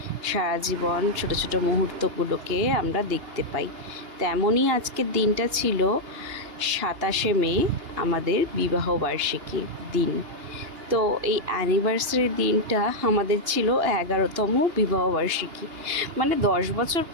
সারা জীবন ছোট ছোট মুহূর্তগুলোকে আমরা দেখতে পাই। তেমনই আজকের দিনটা ছিল 27শে মে, আমাদের বিবাহবার্ষিকী দিন। তো এই অ্যানিভার্সারি দিনটা আমাদের ছিল 11তম বিবাহবার্ষিকী, মানে 10 বছর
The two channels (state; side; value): late; left; 2.8 ms